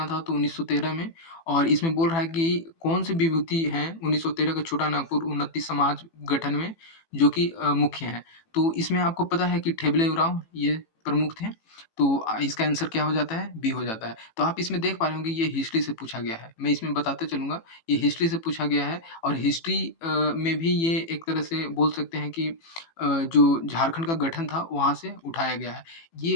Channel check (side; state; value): right; late; 18 ms